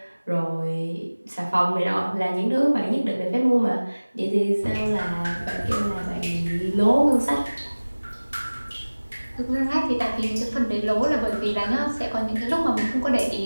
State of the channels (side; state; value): both; inverted; correlation -1.00